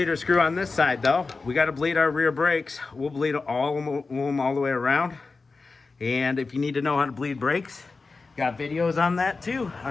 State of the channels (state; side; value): quieter; right; 4.0 dB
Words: screw on this side though. We got to bleed our rear brakes. We'll bleed all of them all the way around. And if you need to know how to bleed brakes, got videos on that too,